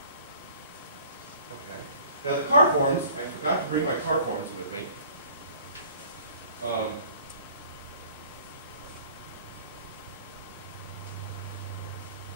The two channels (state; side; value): inverted; both; correlation -0.52